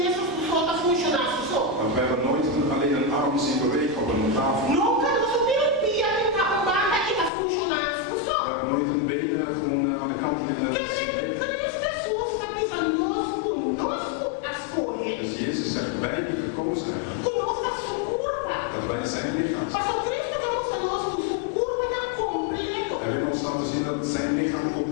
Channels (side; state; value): right; drops out; at 7.3 s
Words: Want we hebben nooit alleen een arm zien bewegen op een tafel. We hebben nooit een been gewoon aan de kant Dus Jezus zegt, wij die gekozen hebben, dat wij zijn lichaam zijn. Hij wil ons laten zien dat zijn lichaam